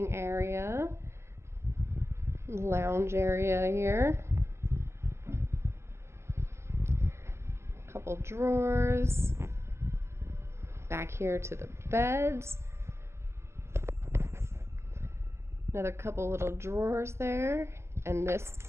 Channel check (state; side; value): late; left; 0.13 ms